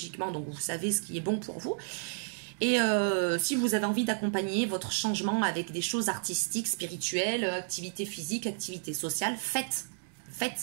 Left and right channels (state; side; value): silent; left; digital silence